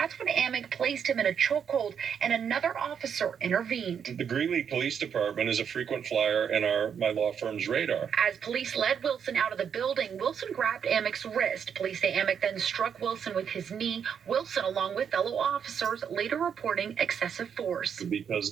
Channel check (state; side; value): quieter; left; 7.6 dB